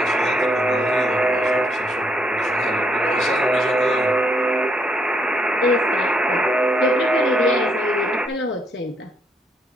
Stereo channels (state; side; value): normal; both; correlation 0.73